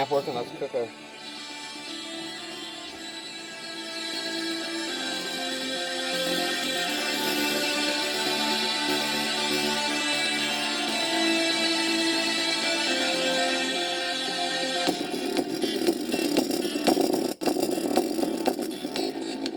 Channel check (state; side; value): identical; both; correlation 1.00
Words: working, let's cook her.